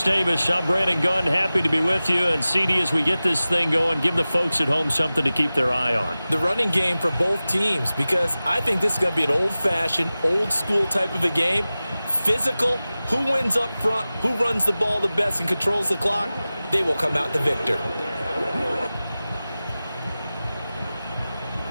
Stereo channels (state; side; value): inverted; both; correlation -0.96